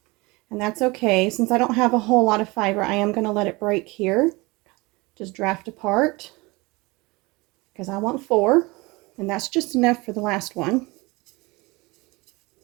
And that's okay. Since I don't have a whole lot of fiber, I am going to let it break here. Just draft apart because I want 4. And that's just enough for the last one.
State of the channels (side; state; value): left; quieter; 24.0 dB